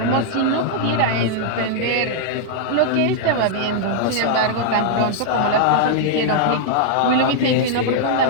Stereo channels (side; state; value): both; different; correlation -0.01